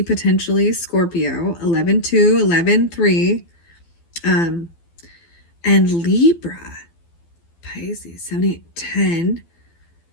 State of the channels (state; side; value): late; right; 12 ms